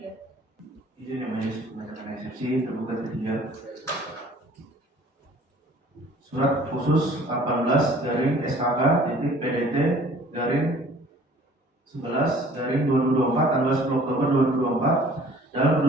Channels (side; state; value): both; normal; correlation 0.52